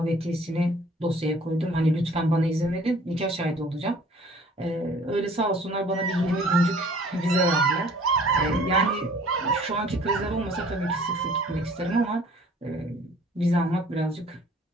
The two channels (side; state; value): both; normal; correlation 0.53